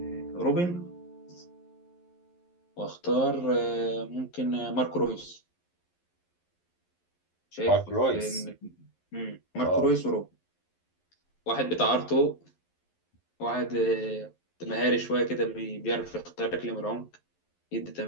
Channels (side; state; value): right; late; 11 ms